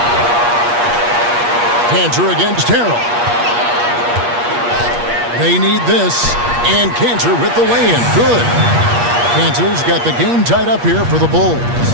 Cantor against Harrell. They need this. And Cantor with the lay-in. Good. Cantor's got the game tied up here for the Bulls.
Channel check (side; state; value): left; late; 8.4 ms